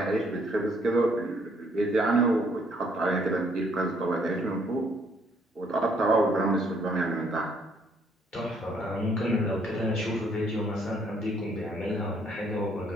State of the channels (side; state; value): both; normal; correlation 0.67